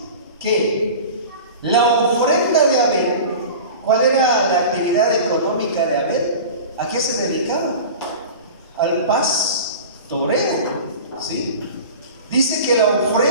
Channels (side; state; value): both; inverted; correlation -0.35